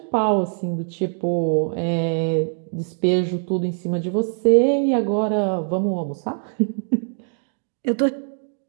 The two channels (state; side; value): silent; left; digital silence